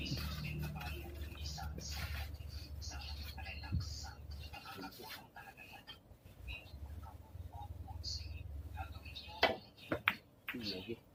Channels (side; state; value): both; identical; correlation 1.00